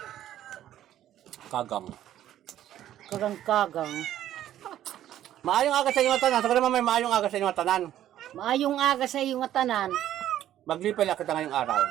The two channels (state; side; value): quieter; left; 12.1 dB